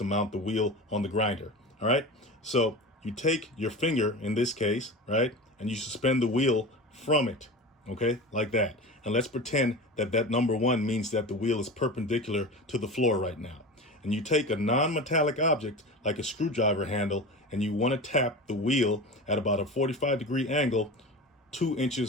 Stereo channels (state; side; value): normal; both; correlation 0.30